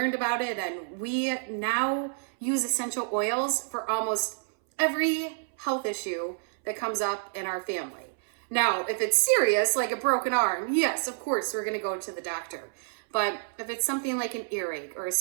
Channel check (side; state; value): left; silent; 59 dB below the other